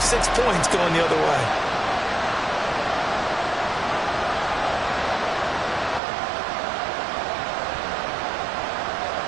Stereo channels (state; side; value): drops out; left; at 6.0 s